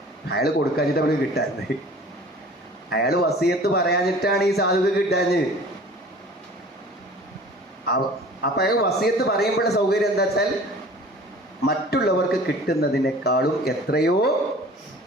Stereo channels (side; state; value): both; normal; correlation 0.45